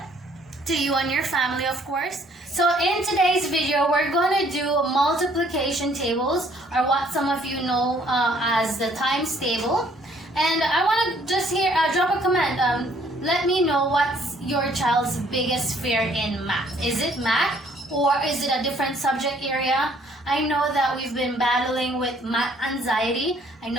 to you and your family, of course. So in today's video, we're going to do multiplication tables, or what some of you know as the times table. And I want to just drop a comment. Let me know what's your child's biggest fear in math. Is it math, or is it a different subject area? I know that we've been battling with math anxiety. I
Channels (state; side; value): normal; both; correlation 0.62